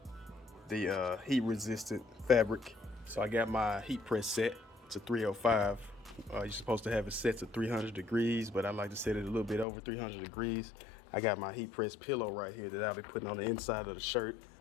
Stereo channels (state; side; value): drops out; right; at 9.7 s